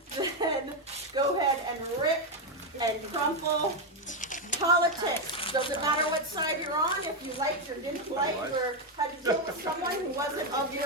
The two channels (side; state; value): both; normal; correlation 0.05